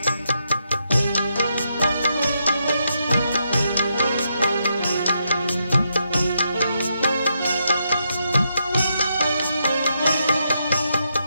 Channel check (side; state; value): both; inverted; correlation -0.80